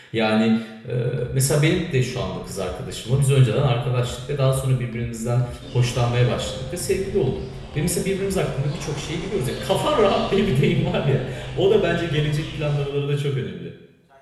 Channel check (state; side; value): identical; both; correlation 1.00